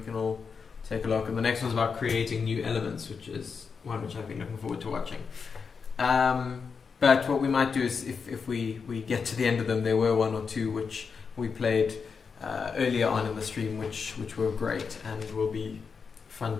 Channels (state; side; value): quieter; right; 5.6 dB